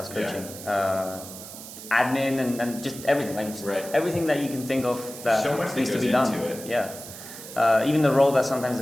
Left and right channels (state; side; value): noise; right; hiss, 13 dB below the sound